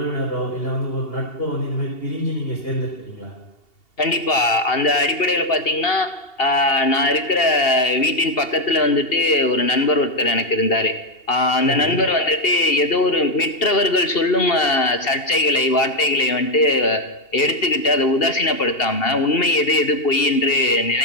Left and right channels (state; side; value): late; right; 2.8 ms